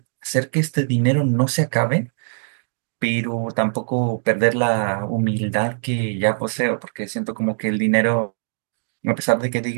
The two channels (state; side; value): silent; left; digital silence